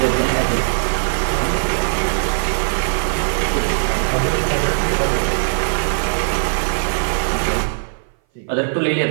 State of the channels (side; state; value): left; silent; 58 dB below the other